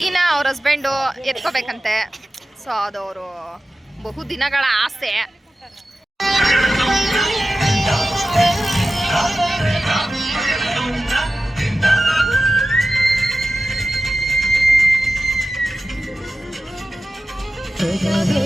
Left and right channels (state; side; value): normal; both; correlation 0.94